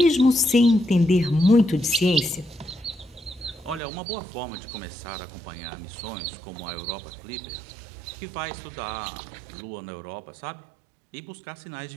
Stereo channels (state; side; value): drops out; left; at 3.8 s